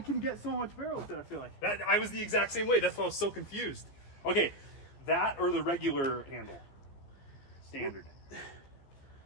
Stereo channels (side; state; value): right; late; 15 ms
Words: get so much barrel with it, I feel like. That I was the exact same way. That's why I was so confused. Okay, that or the regular handle? Standard.